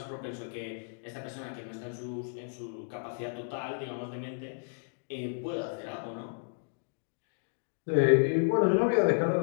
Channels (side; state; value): right; silent; digital silence